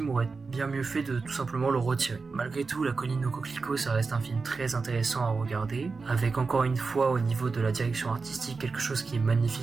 aurait bien mieux fait de tout simplement le retirer. Malgré tout, La colline au coquelicot, ça reste un film très intéressant à regarder, avec encore une fois au niveau de la direction artistique quelque chose qui est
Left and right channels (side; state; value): left; quieter; 4.4 dB